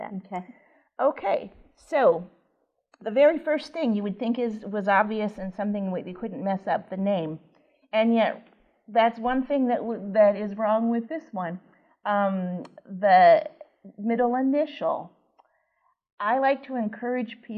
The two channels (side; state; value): both; identical; correlation 1.00